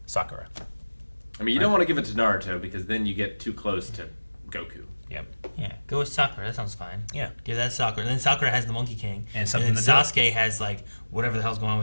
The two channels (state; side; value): inverted; both; correlation -1.00